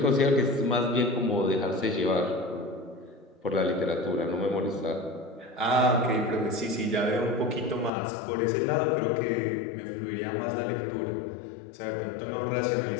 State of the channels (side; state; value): right; drops out; at 7.9 s